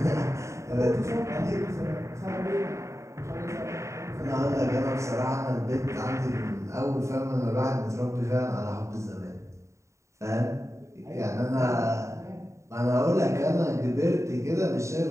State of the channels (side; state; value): left; late; 0.14 ms